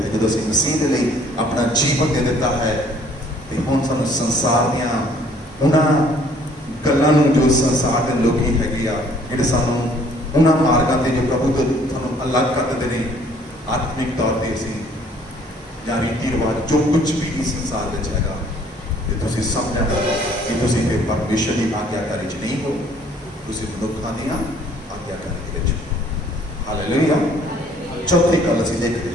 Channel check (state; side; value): normal; both; correlation 0.59